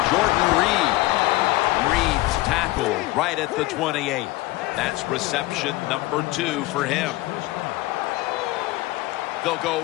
Jordan Reed. Reed's tackled right at the 28. That's reception number 2 for him. They'll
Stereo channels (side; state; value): right; quieter; 19.1 dB